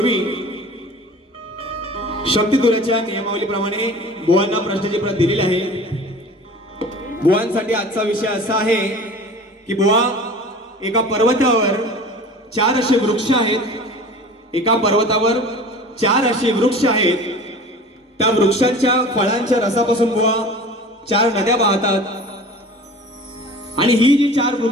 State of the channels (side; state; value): both; normal; correlation 0.40